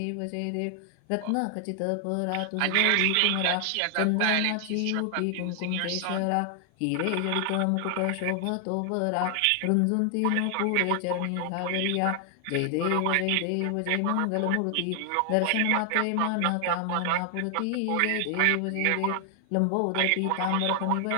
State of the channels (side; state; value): both; different; correlation 0.00